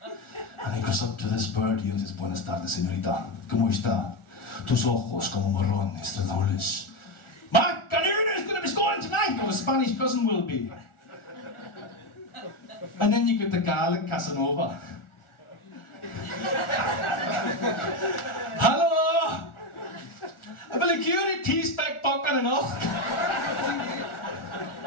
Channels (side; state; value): right; late; 1.4 ms